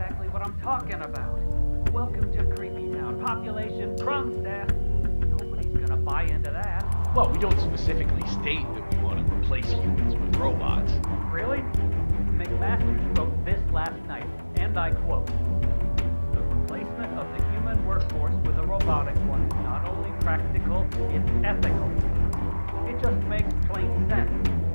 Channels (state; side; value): inverted; both; correlation -1.00